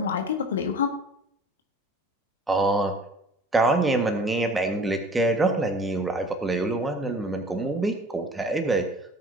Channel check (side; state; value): both; normal; correlation 0.46